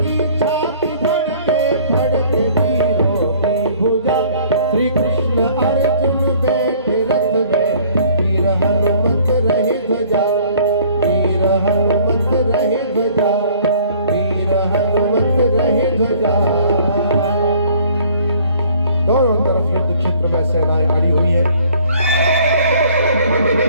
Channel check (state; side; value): inverted; both; correlation -0.56